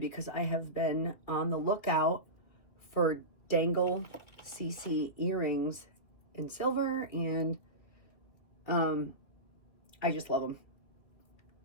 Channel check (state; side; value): late; right; 2.5 ms